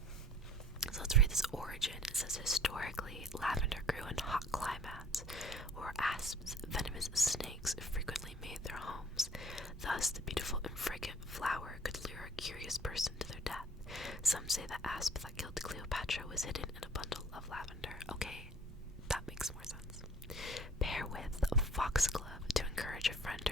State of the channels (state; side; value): normal; both; correlation 0.52